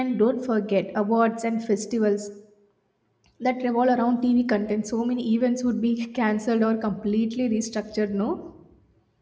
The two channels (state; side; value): identical; both; correlation 1.00